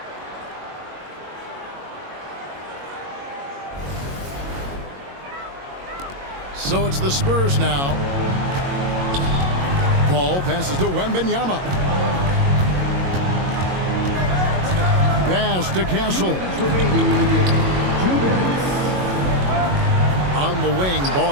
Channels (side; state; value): left; late; 22 ms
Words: So it's the Spurs now. Paul passes to Wembanyama. Pass to Castle. On the wing,